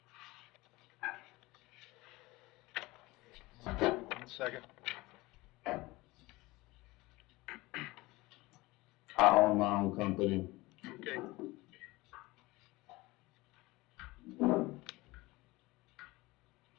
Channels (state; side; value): quieter; right; 21.1 dB